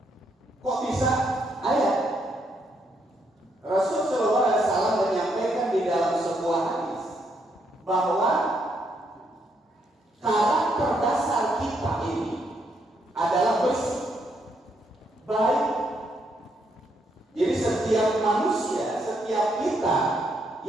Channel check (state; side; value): normal; both; correlation 0.75